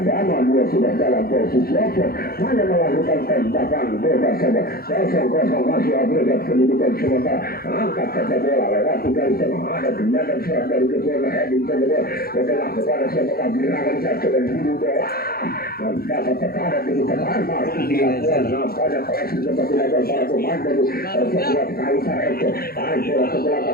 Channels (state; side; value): late; right; 0.44 ms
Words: dia sudah dalam posisi open hanya melakukan tembakan bebas saja 0-0 masih agregat kedudukan sementara angkat saja bola lewat dari tengah ada tindakan serang dari ketua heading saja bola setelah kepada siapa gerakan satu dan dulu bola dan dapat tekanan di depan masih dilakukan nampaknya koleksi seperti level para pemain dari sebuah Kaisar Eko tarik bola ke